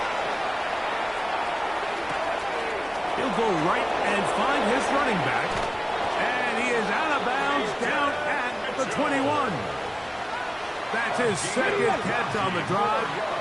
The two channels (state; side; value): identical; both; correlation 1.00